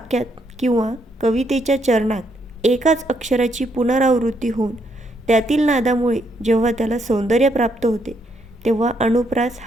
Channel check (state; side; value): normal; both; correlation 0.74